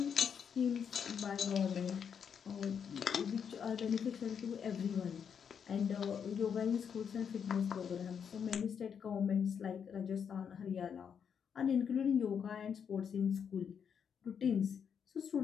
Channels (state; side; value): quieter; right; 7.3 dB